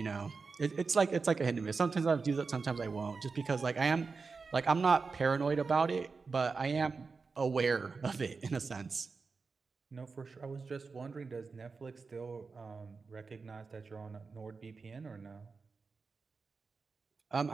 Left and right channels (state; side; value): quieter; left; 4.6 dB